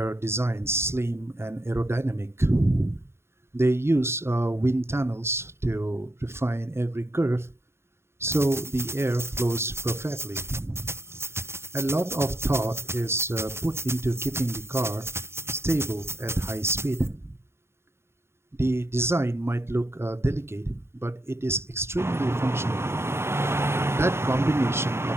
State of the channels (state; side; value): late; left; 0.12 ms